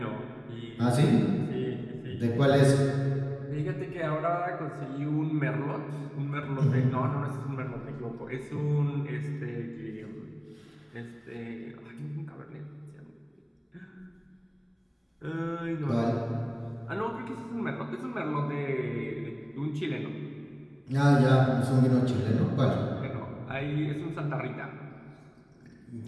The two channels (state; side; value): identical; both; correlation 1.00